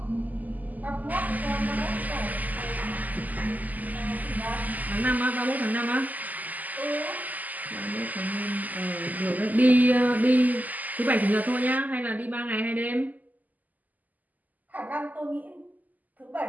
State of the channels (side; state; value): left; late; 0.080 ms